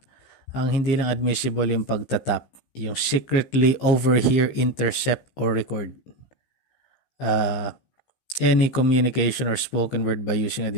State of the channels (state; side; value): late; right; 15 ms